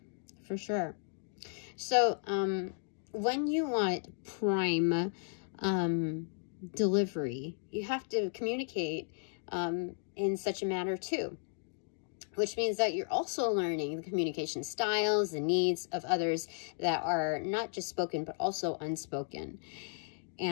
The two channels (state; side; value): silent; right; 55 dB below the other